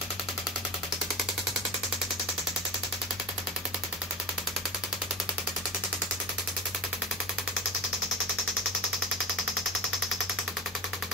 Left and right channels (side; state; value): both; normal; correlation 0.30